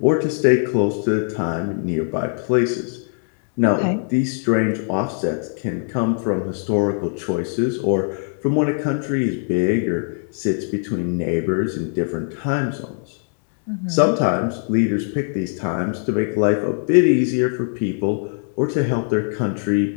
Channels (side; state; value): right; silent; 58 dB below the other